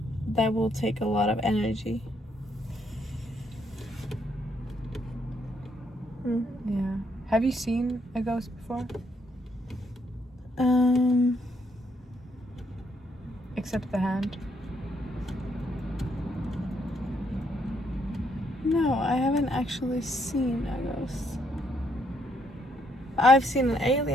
that will take a lot of energy. Yeah. Have you seen a ghost before? Except the hand. No, I haven't actually seen a ghost. I've seen an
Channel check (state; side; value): normal; both; correlation 0.73